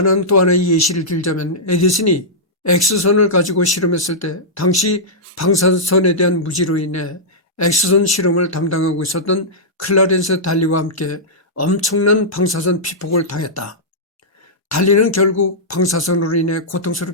또 하나의 예시를 들자면 에디슨이 X선을 가지고 실험했을 때 당시 방사선에 대한 무지로 인해 X선 실험을 담당하고 있었던 클라렌스 달리와 함께 엄청난 방사선 피폭을 당했다. 달리는 결국 방사선으로 인해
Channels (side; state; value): both; normal; correlation -0.12